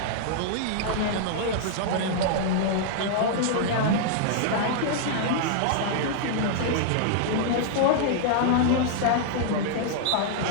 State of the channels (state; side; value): different; both; correlation -0.01